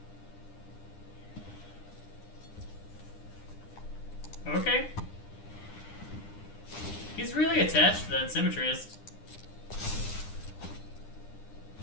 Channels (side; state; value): right; late; 9.9 ms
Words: Okay. He's really attached to that Symmetrist.